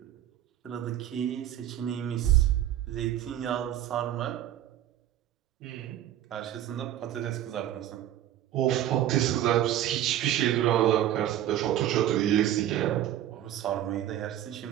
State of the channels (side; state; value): left; quieter; 12.2 dB